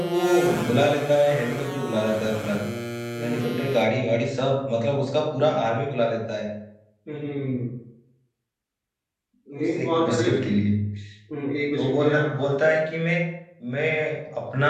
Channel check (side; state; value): both; identical; correlation 1.00